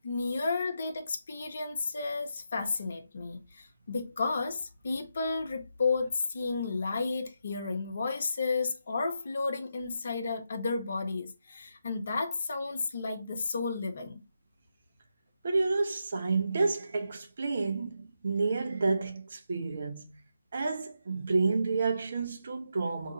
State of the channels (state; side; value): inverted; both; correlation -0.83